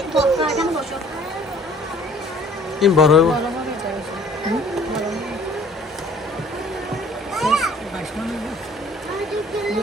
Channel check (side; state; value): both; normal; correlation 0.54